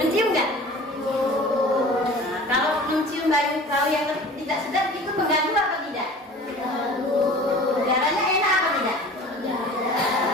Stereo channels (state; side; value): normal; both; correlation 0.42